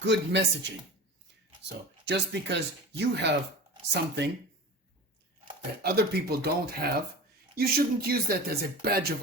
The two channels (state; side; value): normal; both; correlation 0.34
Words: messaging. So just because you have something that other people don't have, you shouldn't use that as a badge